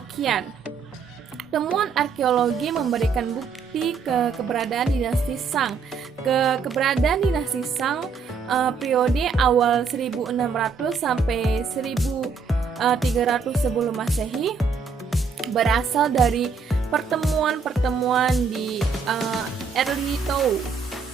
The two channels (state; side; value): quieter; left; 5.3 dB